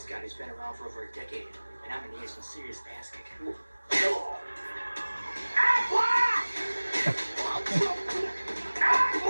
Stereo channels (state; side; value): inverted; both; correlation -1.00